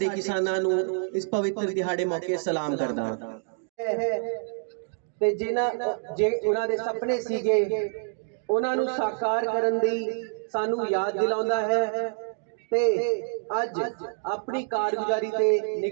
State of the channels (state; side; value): silent; left; digital silence